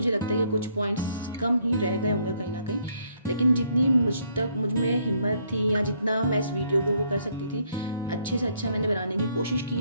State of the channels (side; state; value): both; inverted; correlation -0.69